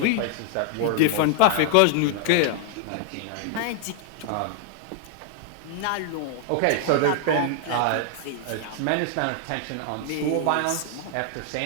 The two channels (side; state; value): both; different; correlation 0.00